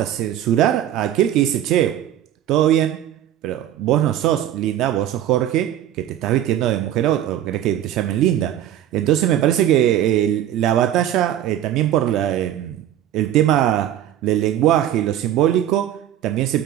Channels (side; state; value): left; quieter; 11.5 dB